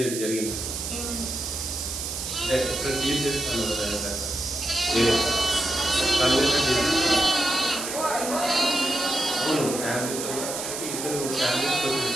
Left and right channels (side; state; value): right; noise; hiss, 5 dB below the sound